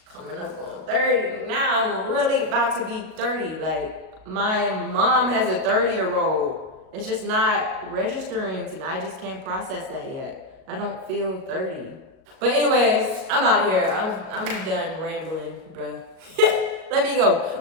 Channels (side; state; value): left; late; 38 ms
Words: Coming up on 30. Now I'm really about to be 30. Like, my mom has a 30-year-old. It's just not registering to me. I just can't process that yet. I don't feel 30. But anyways, I'm out of here. I'm done rambling, bro. Let me go.